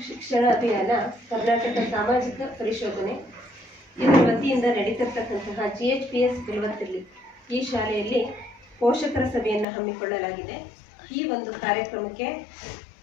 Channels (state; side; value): drops out; right; at 9.7 s